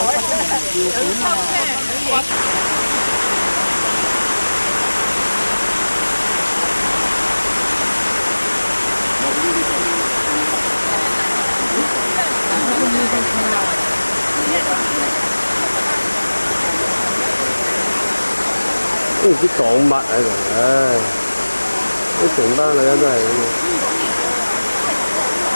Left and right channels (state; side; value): inverted; both; correlation -1.00